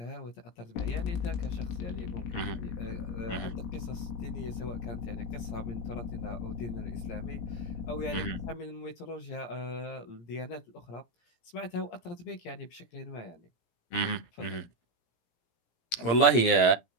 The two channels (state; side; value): late; right; 17 ms